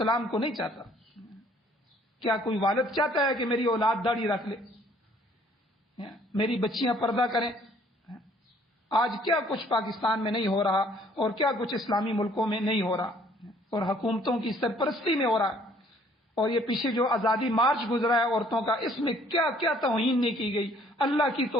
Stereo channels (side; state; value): both; normal; correlation 0.60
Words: کو نہیں چاہتا۔ کیا کوئی والد چاہتا ہے کہ میری اولاد داڑھی رکھ لے، میری بچیاں پردہ کریں؟ آج کیا کچھ پاکستان میں نہیں ہو رہا، اور کیا کچھ اسلامی ملکوں میں نہیں ہو رہا، اور حکومتوں کی سرپرستی میں ہو رہا ہے۔ اور یہ پیچھے جو آزادی مارچ گزرا ہے عورتوں کا، اس میں کیا کیا توہین نہیں کی گئی، اللہ کی